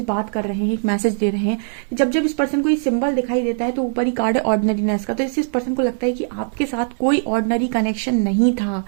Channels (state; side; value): silent; left; digital silence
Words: बात कर रहे हैं, एक मैसेज दे रहे हैं। जब जब इस पर्सन को ये सिंबल दिखाई देता है तो ऊपर ही कार्ड है ऑर्डिनरीनेस का, तो इससे इस पर्सन को लगता है कि आपके साथ कोई ऑर्डिनरी कनेक्शन नहीं था,